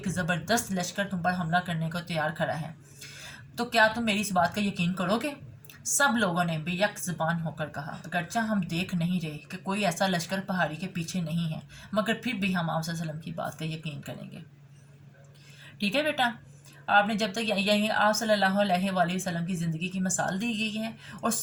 ज़बरदस्त लश्कर तुम पर हमला करने को तैयार खड़ा है, तो क्या तुम मेरी इस बात का यकीन करोगे? सब लोगों ने बेयक ज़बान होकर कहा, अगरचे हम देख नहीं रहे कि कोई ऐसा लश्कर पहाड़ी के पीछे नहीं है, मगर फिर भी हम आप सल्लल्लाहु अलैहि वसल्लम की बात का यकीन करेंगे। ठीक है बेटा, आपने जब तक यही आप सल्लल्लाहु अलैहि वसल्लम की ज़िंदगी की मिसाल दी गई है और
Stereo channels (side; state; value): both; identical; correlation 1.00